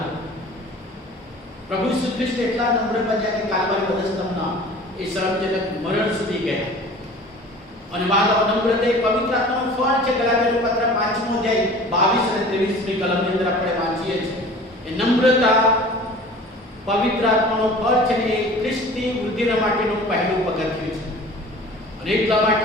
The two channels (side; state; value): both; normal; correlation 0.43